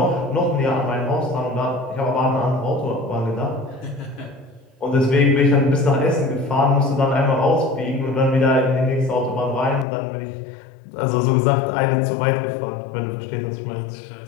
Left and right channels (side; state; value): right; drops out; at 9.9 s